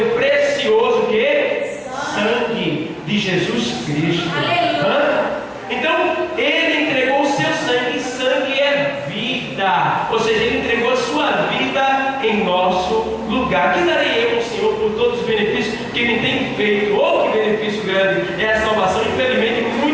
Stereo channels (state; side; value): identical; both; correlation 1.00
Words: precioso que? Sangue de Jesus Cristo. Então ele entregou o seu sangue, e sangue é vida, ou seja, ele entregou a sua vida em nosso lugar. Que darei eu ao Senhor por todos os benefícios que me tem feito? Oh, que benefício grande é a salvação. Infelizmente